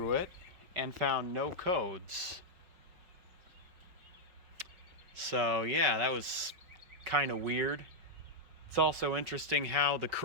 it and found no codes. So yeah, that was kind of weird. It's also interesting how the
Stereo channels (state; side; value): late; left; 5.3 ms